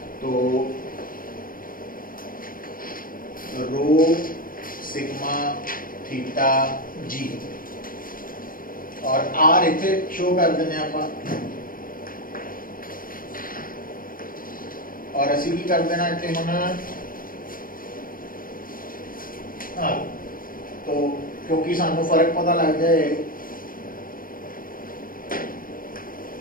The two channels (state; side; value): late; right; 0.41 ms